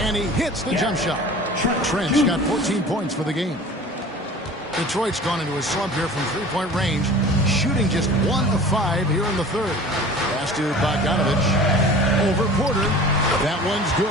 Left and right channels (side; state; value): both; normal; correlation 0.42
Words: and he hits the jump shot. Trent's got 14 points for the game. Detroit's gone into a slump here from three-point range, shooting just 1 of 5 here in the third. Pass to Bogdanovich. Over Porter. That one's